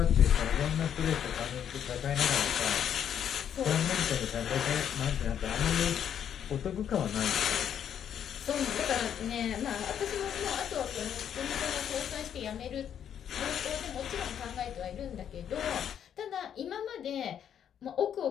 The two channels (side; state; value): right; quieter; 9.1 dB